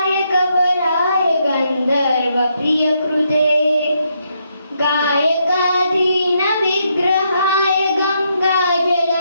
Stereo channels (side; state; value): both; inverted; correlation -0.77